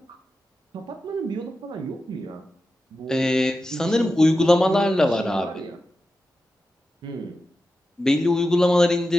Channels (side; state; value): both; normal; correlation 0.91